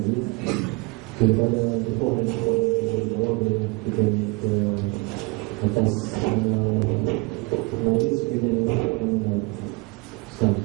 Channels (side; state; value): left; quieter; 27.0 dB